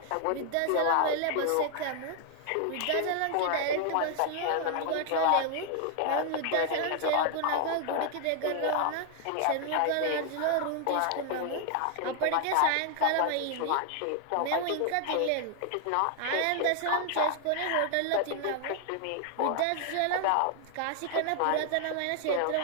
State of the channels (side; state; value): both; different; correlation 0.00